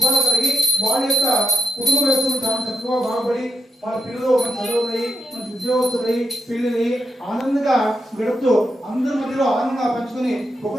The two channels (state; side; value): normal; both; correlation 0.84